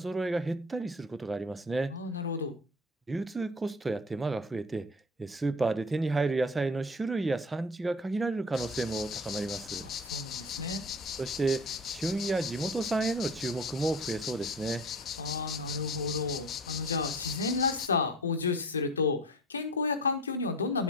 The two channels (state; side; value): normal; both; correlation 0.39